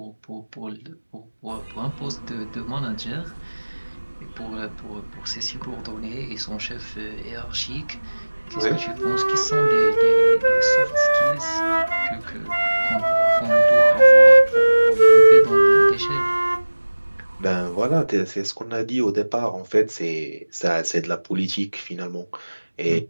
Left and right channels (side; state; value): both; inverted; correlation -1.00